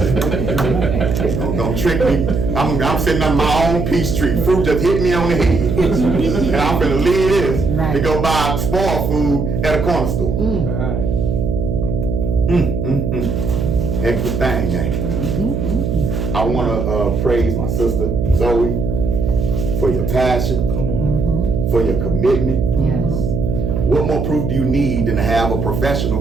Don't trick me. I'm sitting on my own peach tree. Fruit just hit me on the head. And I'm gonna leave this to go buy spoiled food at a corner store. Heck of a thing, man. I wanna praise my sister, Zoe, for your passion, for your commitment. Yes. What more proof do you need than to have a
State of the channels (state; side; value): noise; right; hum, 1 dB below the sound